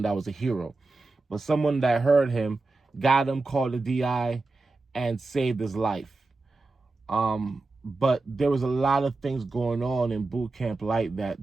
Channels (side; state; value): left; quieter; 3.4 dB